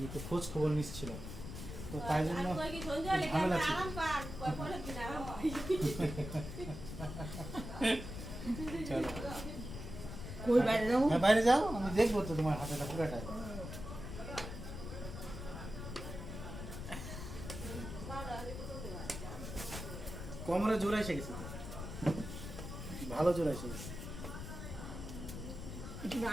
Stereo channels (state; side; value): noise; left; rumble, 8 dB below the sound